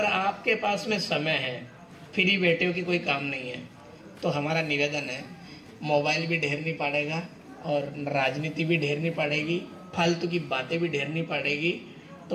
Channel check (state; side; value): identical; both; correlation 1.00